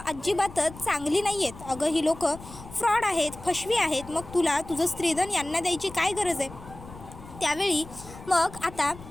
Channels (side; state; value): left; noise; rumble, 16 dB below the sound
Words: अजिबातच चांगली नाही आहेत. अगं ही लोकं फ्रॉड आहेत, फसवी आहेत. मग तुला तुझं स्त्रीधन यांना द्यायची काय गरज आहे? त्यावेळी मग आता